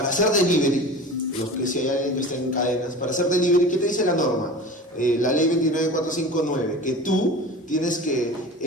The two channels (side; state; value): both; normal; correlation 0.36